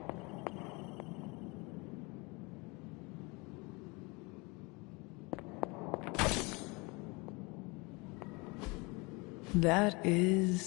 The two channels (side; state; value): right; quieter; 27.1 dB